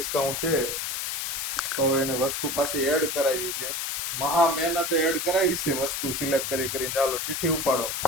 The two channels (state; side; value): noise; left; hiss, 2 dB below the sound